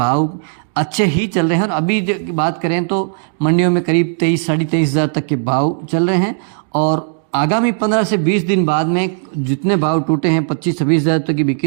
अच्छे ही चल रहे हैं। और अभी बात करें तो मंडियों में करीब 23 साढ़े 23 हज़ार तक के भाव चल रहे हैं। और आगामी 15 से 20 दिन बाद में जितने भाव टूटे हैं 25-26 हज़ार तक की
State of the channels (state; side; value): silent; left; digital silence